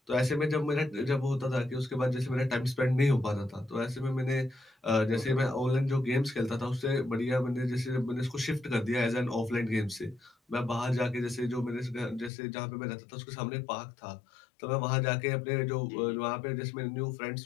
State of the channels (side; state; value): right; drops out; at 12.3 s